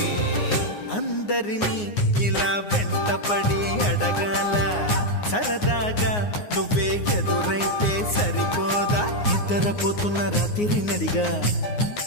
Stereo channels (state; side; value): late; right; 9.6 ms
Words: అందరినీ ఇలా వెంటపడి అడగాల సరదాగా నువ్వే ఎదురైతే సరిపోదా నిద్రపోతున్న రాత్రి నడిగా